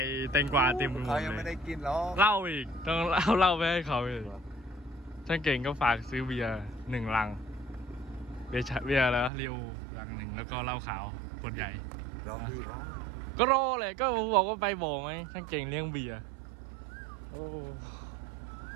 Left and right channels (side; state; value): left; drops out; at 9.3 s